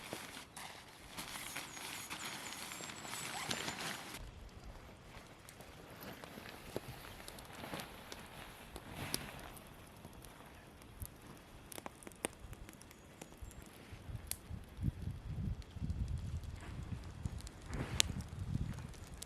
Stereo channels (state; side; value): identical; both; correlation 1.00